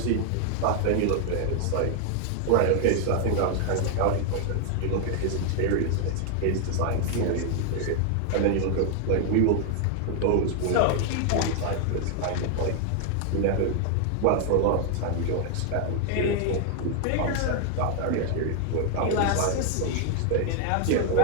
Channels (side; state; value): both; different; correlation 0.00